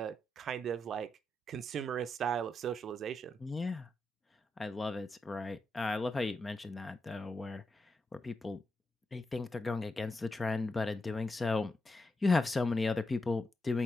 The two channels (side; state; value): both; normal; correlation 0.85